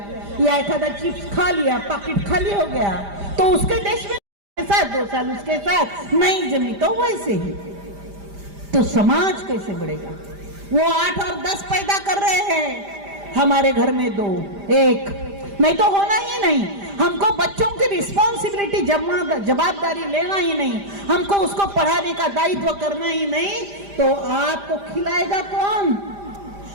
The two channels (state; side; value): late; left; 5.0 ms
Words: या एक आधा चिप्स खा लिया, पैकेट खाली हो गया, तो उसके देश में साथ 2 साल उसके साथ नहीं जमी, तो वैसे ही तो समाज कैसे बढ़ेगा? वो 8 और 10 पैदा कर रहे हैं, हमारे घर में 2 1 नहीं तो होना ही नहीं। हमको बच्चों की रिस्पॉन्सिबिलिटी जवाबदारी लेना ही नहीं, हमको उसको पढ़ाने का दायित्व करना ही नहीं, तो आपको खिलाएगा कौन?